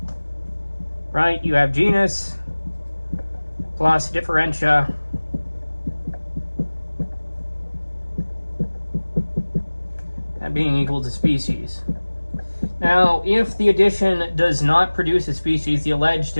Right? You have genus plus differentia that being equal to species. Now, if the addition does not produce a species, the alleged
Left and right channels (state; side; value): inverted; both; correlation -1.00